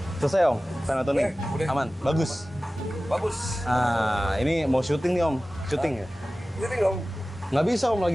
Selesai Om? Final tuning? Udah. Aman? Bagus? Bagus. Nah, ini mau syuting nih Om, syuting ya? Syuting dong. Nggak bisa Om,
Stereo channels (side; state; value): both; normal; correlation 0.96